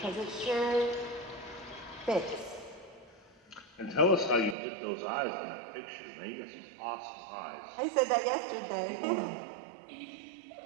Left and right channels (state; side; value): drops out; left; at 4.5 s